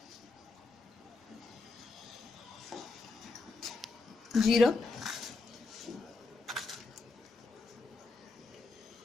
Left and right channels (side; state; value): right; quieter; 3.8 dB